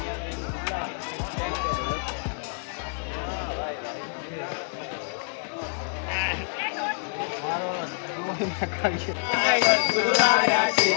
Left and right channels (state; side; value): silent; right; 56 dB below the other